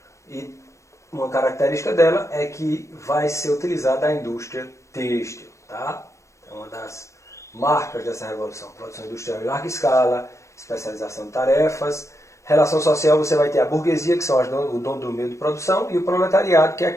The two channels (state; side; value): late; right; 0.15 ms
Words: e uma característica dela é que vai ser utilizada a indústria têxtil. Tá? É uma das marcas dessa revolução. Produção industrial em larga escala, especialização de tarefas. Relação social, você vai ter a burguesia, que são o dono do meio de produção, e o proletariado, que é